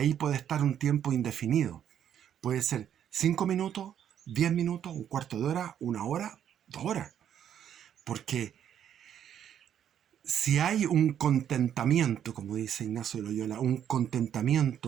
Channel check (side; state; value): left; quieter; 9.6 dB